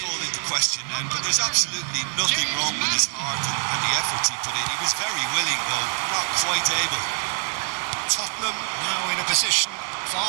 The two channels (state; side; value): quieter; left; 39.5 dB